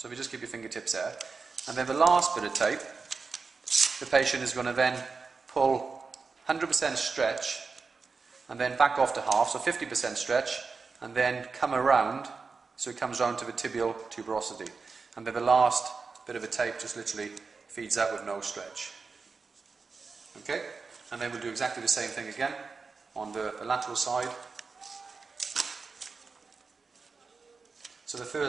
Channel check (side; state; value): left; quieter; 4.6 dB